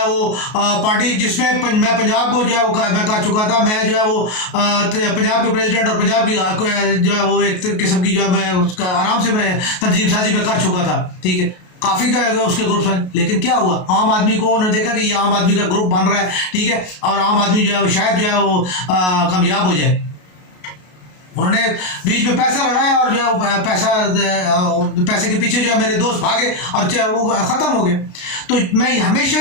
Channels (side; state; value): right; late; 33 ms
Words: وہ پارٹی جس میں میں پنجاب کو جو ہے وہ میں کر چکا تھا, میں جو ہے وہ پنجاب کے پریزیڈنٹ اور پنجاب کی جو ہے وہ ایک قسم کی جو ہے میں اس کا آرام سے میں تنظیم سازی میں کر چکا تھا. ٹھیک ہے, کافی کا اس کے گروپ ہیں, لیکن کیا ہوا عام آدمی کو انہوں نے دیکھا کہ یہ عام آدمی کا گروپ بن رہا ہے. ٹھیک ہے, اور عام آدمی جو ہے وہ شاید جو ہے وہ کامیاب ہو جائے. انہوں نے بیچ میں پیسہ لڑایا اور جو ہے پیسے کے پیچھے جو ہے میرے دوست بھاگے اور وہ ختم ہو گئے. تو میں ہمیشہ